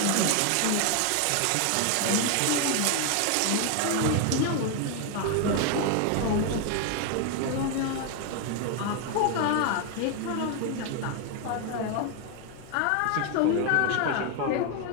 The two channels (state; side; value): different; both; correlation 0.01